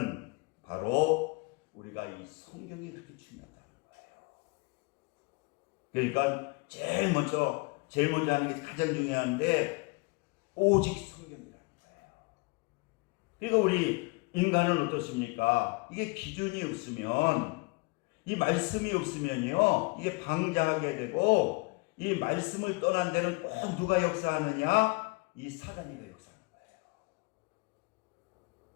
바로 우리가 이 성경이 그렇게 중요하다는 거예요. 그러니까 제일 먼저 하는 게 가장 중요한데 오직 성경이라는 거예요. 그러니까 우리 인간은 어떻습니까? 이게 기준이 없으면, 이 말씀이 없으면요, 이게 방장하게 되고, 이 말씀을 떠난 데는 꼭 누가 역사하느냐? 이 사단이가 역사하는 거예요.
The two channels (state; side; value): quieter; right; 28.1 dB